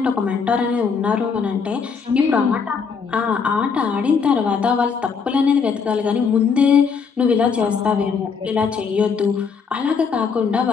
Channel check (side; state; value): right; quieter; 5.8 dB